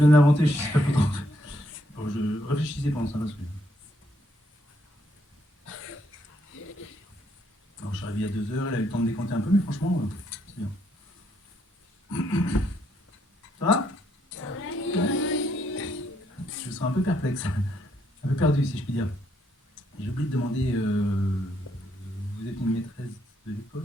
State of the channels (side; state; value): both; normal; correlation 0.74